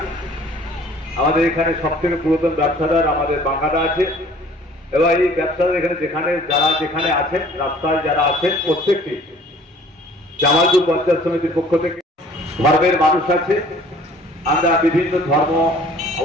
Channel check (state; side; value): normal; both; correlation 0.52